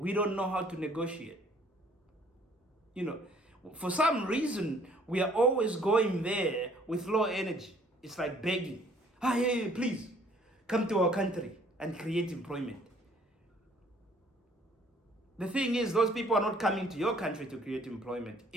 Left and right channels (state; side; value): normal; both; correlation 0.60